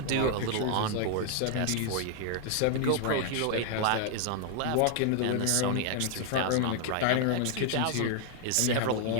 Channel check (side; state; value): both; different; correlation 0.00